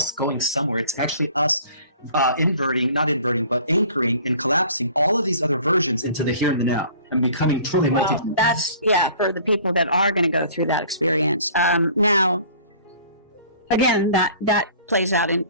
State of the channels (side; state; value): both; inverted; correlation -0.50